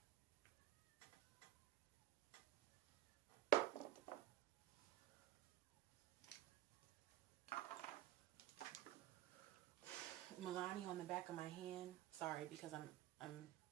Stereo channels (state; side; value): quieter; left; 14.1 dB